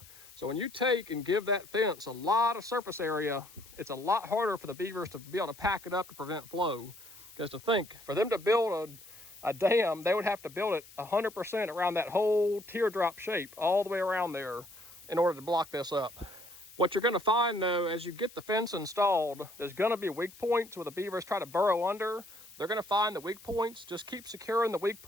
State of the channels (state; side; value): noise; left; hiss, 22 dB below the sound